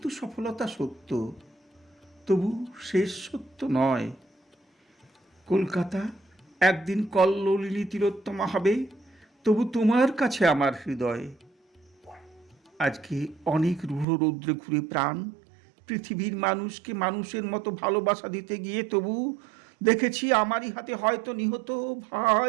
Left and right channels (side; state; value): left; drops out; at 14.1 s